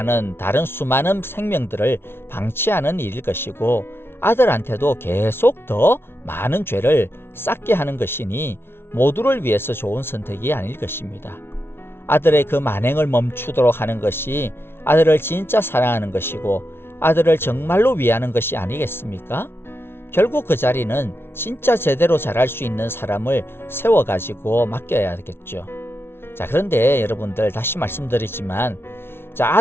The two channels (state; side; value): late; right; 0.12 ms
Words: 다른 수많은 생명들을 방치하는 일일 것이고 아들한테도 계속 더 많은 죄를 쌓게 하는 것이니 모두를 위해서 좋은 선택이 아닐 것입니다. 아들의 그 만행을 멈추도록 하는 것이 아들을 진짜 사랑하는 것이고 아들을 정말로 위하는 것이 아니겠습니까? 결국 그 자리는 진짜 제대로 잘할 수 있는 사람을 세워가지고 맡겨야겠죠. 자, 그런데 여러분들 다시 말씀드리지만